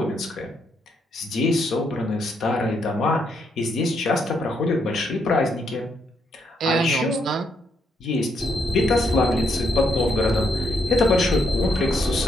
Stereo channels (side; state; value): both; normal; correlation 0.76